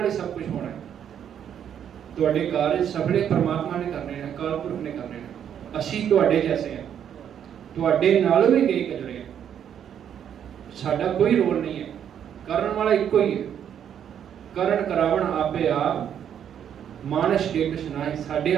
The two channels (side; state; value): left; quieter; 9.1 dB